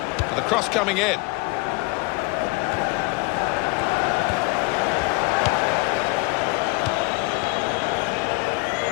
And the cross coming in.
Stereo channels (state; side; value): quieter; right; 26.3 dB